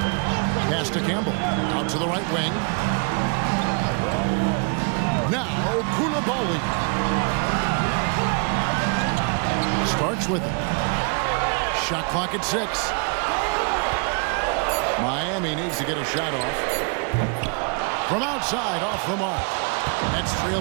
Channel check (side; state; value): left; quieter; 36.5 dB